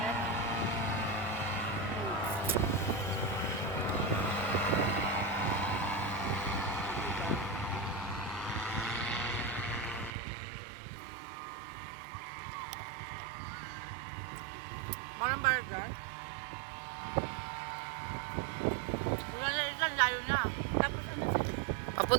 na. Marang burger. Wala na ilan, layo na. Tapos ano?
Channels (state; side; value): drops out; left; at 10.1 s